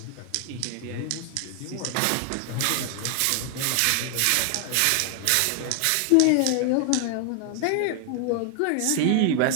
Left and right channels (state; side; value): different; both; correlation 0.00